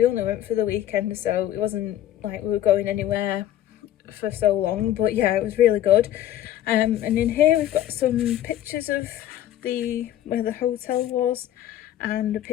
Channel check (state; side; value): quieter; right; 12.2 dB